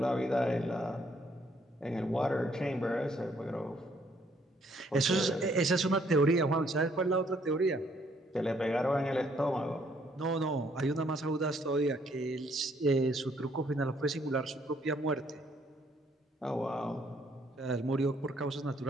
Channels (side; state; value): both; normal; correlation 0.67